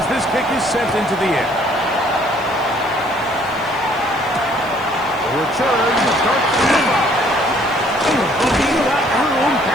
this kick is sent into the air. The return starts from the 5. Looking that room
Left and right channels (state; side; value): noise; right; hiss, 25 dB below the sound